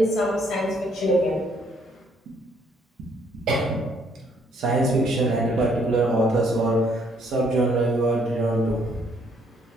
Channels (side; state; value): both; normal; correlation 0.67